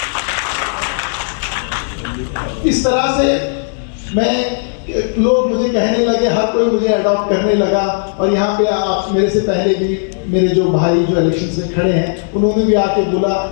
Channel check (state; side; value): silent; right; digital silence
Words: इस तरह से मैं, लोग मुझे कहने लगे, हर कोई मुझे अडॉप्ट करने लगा। और यहाँ पे आप मेरे से पहले भी मेरे जो भाई जो इलेक्शंस में खड़े हैं, उन्होंने भी आके बोला